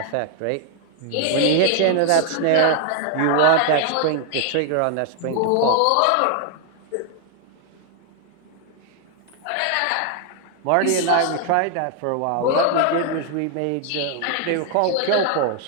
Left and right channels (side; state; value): both; different; correlation 0.00